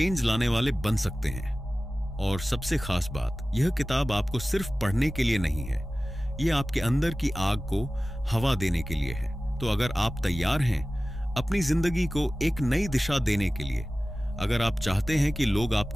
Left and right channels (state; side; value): normal; both; correlation 0.96